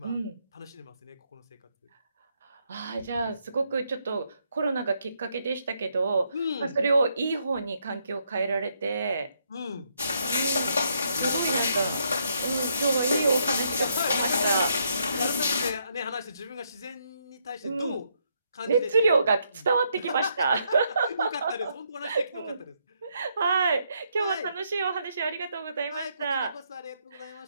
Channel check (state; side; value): inverted; both; correlation -0.75